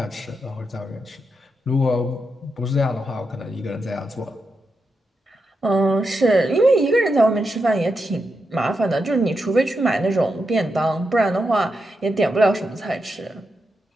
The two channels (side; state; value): both; normal; correlation 0.86